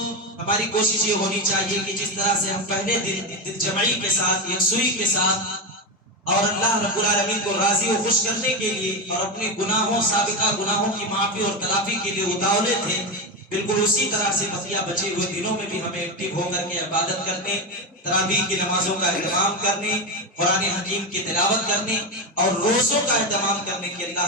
ہماری کوشش یہ ہونی چاہیے کہ جس طرح سے ہم پہلے دل جمعی کے ساتھ، یکسوئی کے ساتھ اور اللہ رب العالمین کو راضی و خوش کرنے کے لیے اور اپنے گناہوں، سابقہ گناہوں کی معافی اور تلافی کے لیے اتاولے تھے، بالکل اسی طرح سے بقیہ بچے ہوئے دنوں میں بھی ہمیں ایکٹیو ہو کر کے عبادت کرنے، تراویح کی نمازوں کا اہتمام کرنے، قرآن حکیم کی تلاوت کرنے اور روزوں کا اہتمام کرنے کی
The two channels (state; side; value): normal; both; correlation 0.14